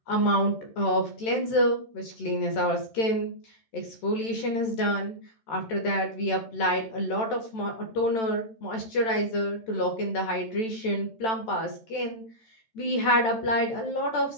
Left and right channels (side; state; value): right; late; 13 ms